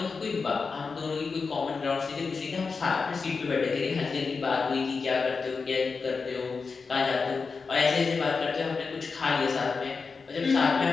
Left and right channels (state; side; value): quieter; right; 4.8 dB